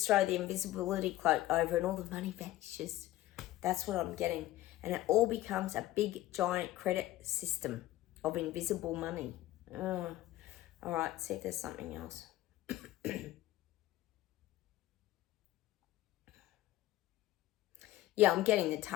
throw the invisibility cloak over and all the money vanishes. That's what I'm getting. And it all becomes a big, giant credit system of invisible money. Oh. All right, see if there's something else. Yeah, I'm getting the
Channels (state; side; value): quieter; right; 15.5 dB